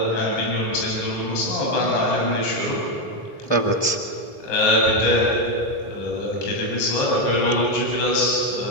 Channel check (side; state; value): right; late; 3.0 ms